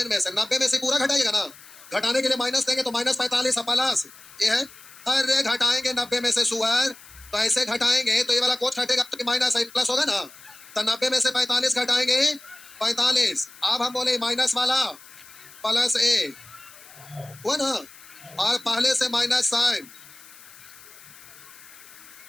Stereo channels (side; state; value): left; noise; hiss, 21 dB below the sound